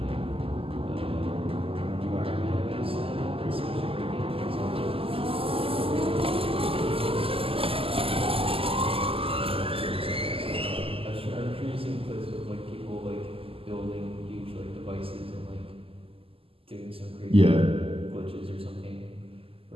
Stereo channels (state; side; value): late; left; 0.27 ms